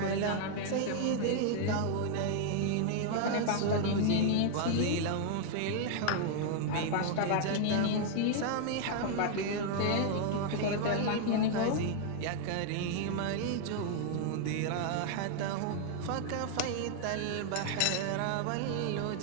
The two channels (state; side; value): different; both; correlation 0.00